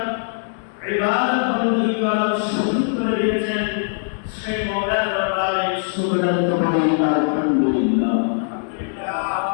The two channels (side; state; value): right; silent; 65 dB below the other